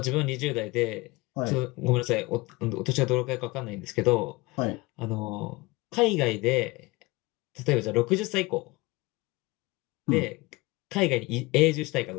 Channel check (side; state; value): right; quieter; 23.0 dB